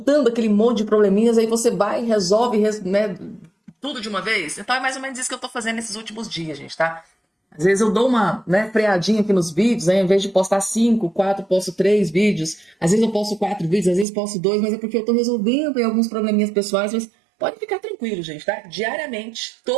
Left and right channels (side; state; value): left; drops out; at 14.1 s